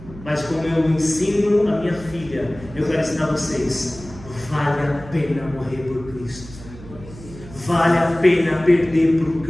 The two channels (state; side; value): noise; right; hum, 17 dB below the sound